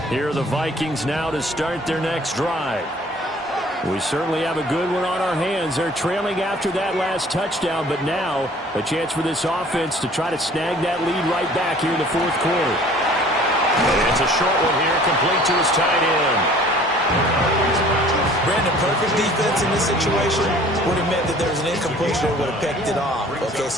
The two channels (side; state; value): both; normal; correlation 0.52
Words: Here are the Vikings now to start their next drive. We certainly have a good one on our hands. They're trailing after that last touchdown, but now a chance for this offense to try to snag that lead right back here in the 4th quarter. And it's a short one here, complete to his tight end. Brandon, perfect defense in this situation would have meant that there was an incompletion or would have picked it off. Okay,